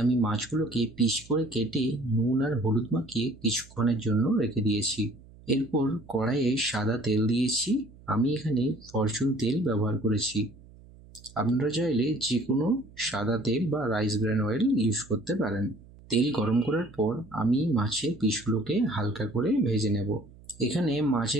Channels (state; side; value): noise; right; hum, 23 dB below the sound